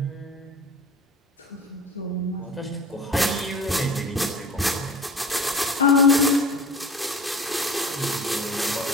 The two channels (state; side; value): normal; both; correlation 0.40